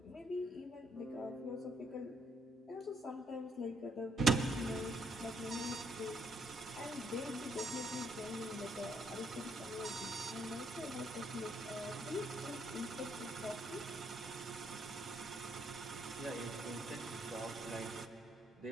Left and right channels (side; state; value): both; normal; correlation 0.72